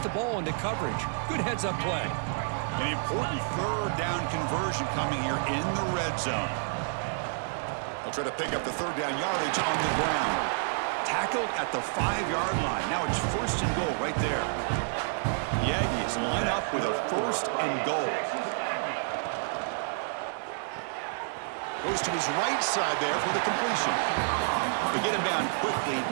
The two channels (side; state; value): left; silent; digital silence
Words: ball into coverage. Good heads-up play. An important third down conversion coming here in the red zone. They'll try to pick up the third down yardage on the ground. Tackled at the 5-yard line. Now it's 1st and goal right there. The Aggies line up with a 1st and goal. Goes to his right side there for the completion. They get him down quickly.